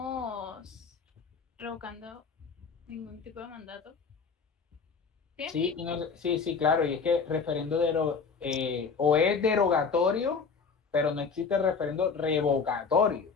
revocando ningún tipo de mandato. ¿Sí? Sí, claro, y es que referendo o es derogatorio, pero no existe referendo revocatorio.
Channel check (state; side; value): quieter; right; 5.3 dB